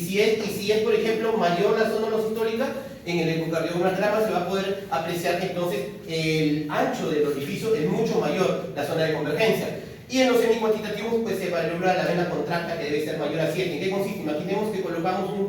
es, por ejemplo, mayor la zona losistólica, en el ecocardiograma se va a poder apreciar que entonces el ancho del orificio es mucho mayor, la zona de convergencia. Y en los semicuantitativos, pues se evalúa la vena contracta, que debe ser mayor a 7. ¿En qué consiste? Imaginemos que colocamos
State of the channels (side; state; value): both; identical; correlation 1.00